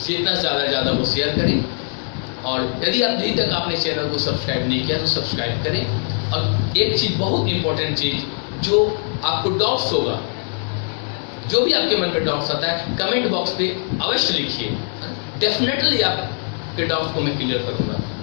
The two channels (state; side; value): silent; right; 56 dB below the other